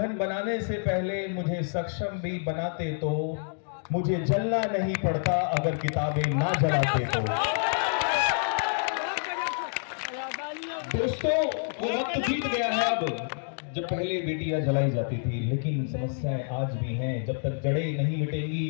बनाने से पहले मुझे सक्षम भी बनाते तो मुझे जलना नहीं पड़ता अगर किताबें ना जलाते तो। दोस्तों वो वक्त बीत गया है अब जब पहले बेटियां जलाई जाती थी, लेकिन समस्याएं आज भी हैं। जब तक जड़ें नहीं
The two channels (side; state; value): right; silent; digital silence